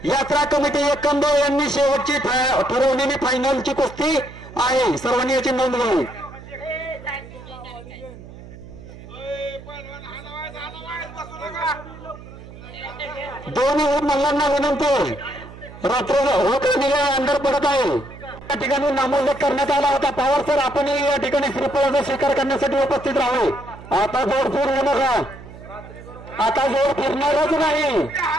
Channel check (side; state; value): right; noise; hum, 16 dB below the sound